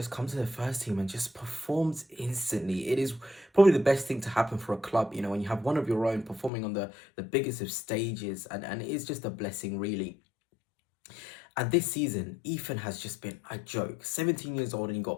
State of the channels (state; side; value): drops out; right; at 6.5 s